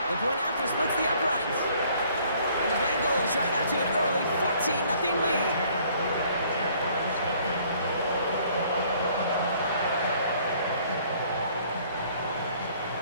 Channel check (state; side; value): inverted; both; correlation -0.60